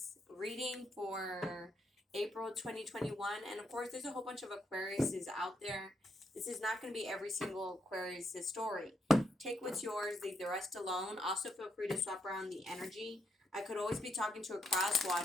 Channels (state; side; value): normal; both; correlation 0.78